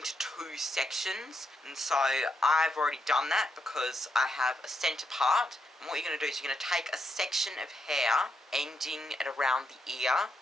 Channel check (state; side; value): normal; both; correlation 0.80